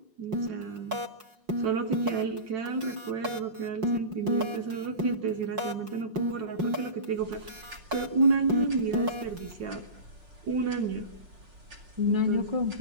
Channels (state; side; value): late; left; 5.5 ms